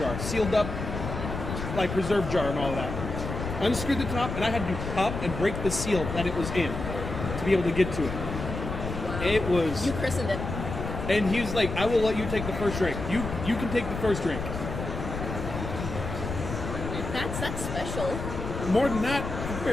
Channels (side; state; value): left; noise; rumble, 6 dB below the sound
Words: sealed up, like preserve jar and all that. Unscrewed the top, and I had to pop and break the seal that it was in to be able to get to it. Wow. It was. You christened it. And he was like, I will let you take the first drink. You can take the first drink. That's special. More than that, I